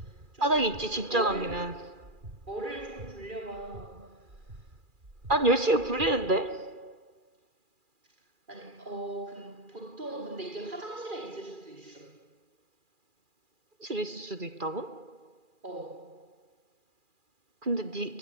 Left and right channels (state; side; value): late; left; 2.4 ms